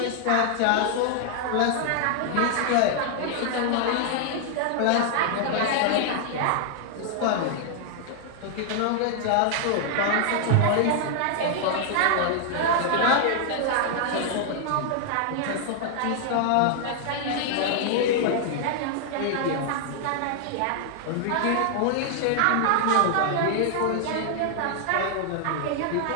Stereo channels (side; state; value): both; different; correlation 0.00